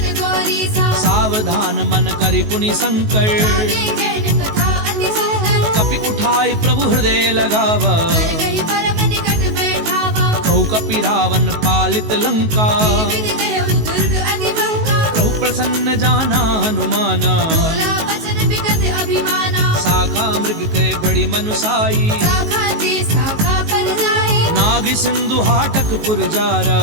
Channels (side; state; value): left; late; 19 ms